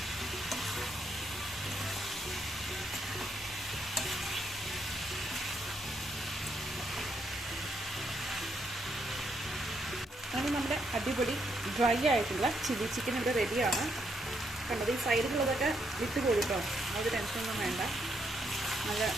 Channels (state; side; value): normal; both; correlation 0.76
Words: അങ്ങനെ നമ്മുടെ അടിപൊളി ഡ്രൈ ആയിട്ടുള്ള ചില്ലി ചിക്കൻ ഇവിടെ റെഡിയാണ്. കണ്ടത് ഈ സൈഡിലുള്ളതൊക്കെ വിട്ട് കൊടുട്ടോ, അത് ടെൻഷനൊന്നും വേണ്ട. നല്ല